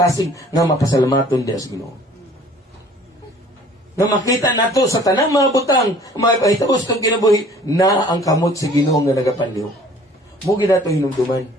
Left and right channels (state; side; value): normal; both; correlation 0.52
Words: nga mapasalamaton diya sa Ginoo. Nga makita nato sa tanang mga butang, mga pahitabos kong kinabuhi, na ang kamot sa Ginoo nga nagapanliw. Mugi nato hinumduman.